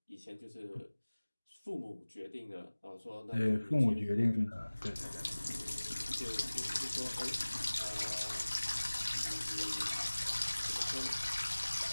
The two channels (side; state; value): both; inverted; correlation -1.00